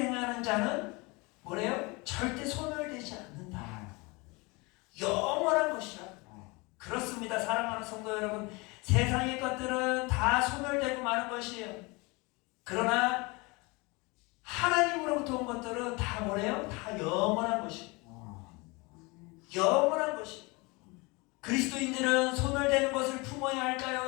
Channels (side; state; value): right; quieter; 26.3 dB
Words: 자는 뭐래요? 절대 소멸되지 않는다. 영원한 것이라. 그렇습니다. 사랑하는 성도 여러분, 세상의 것들은 다 소멸되고 마는 것이에요. 그러나 하나님으로부터 온 것들은 다 뭐래요? 다 영원한 것이에요. 영원한 것이에요. 그리스도인들은 소멸되는 것을 품어야